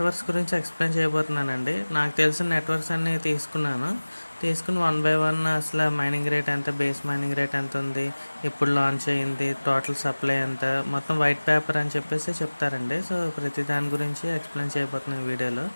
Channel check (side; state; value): both; inverted; correlation -1.00